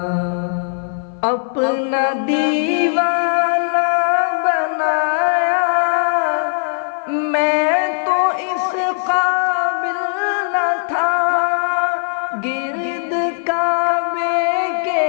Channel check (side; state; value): right; silent; 57 dB below the other